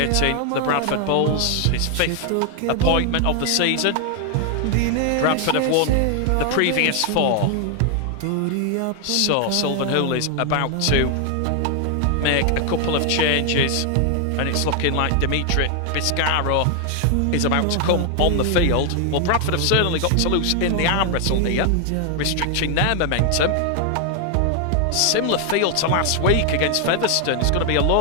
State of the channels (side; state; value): both; different; correlation 0.00